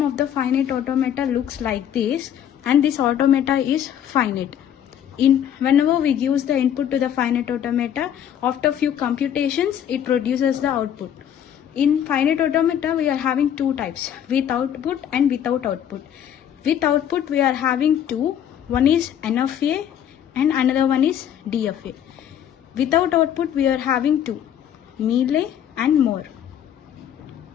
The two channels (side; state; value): right; quieter; 9.7 dB